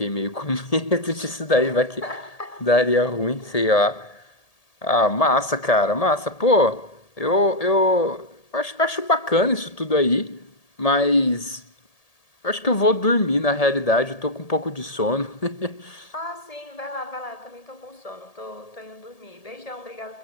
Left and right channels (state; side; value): late; right; 1.8 ms